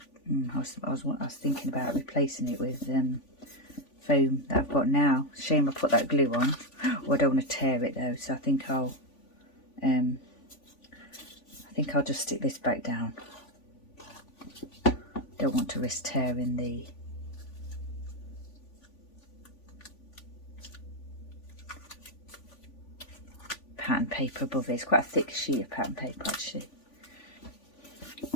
I was thinking about replacing it with foam that I've got now. Shame I put that glue on. Oh, I don't want to tear it though, so I think I'll I think I'll just stick this back down. Don't want to risk tearing the pattern paper above it. It's quite a thick sheet of pattern paper actually.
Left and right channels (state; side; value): late; right; 3.5 ms